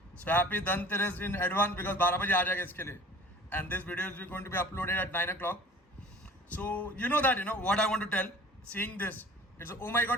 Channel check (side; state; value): both; normal; correlation 0.45